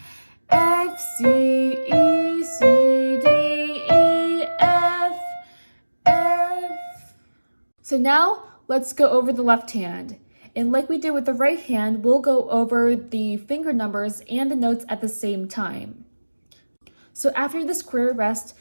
F, C, E, C, D, E, F, F. So now, let's go over the left hand. And like we did with the right hand, we'll go over the finger numbers and the notes at the same time. So after the square rest,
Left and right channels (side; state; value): both; inverted; correlation -1.00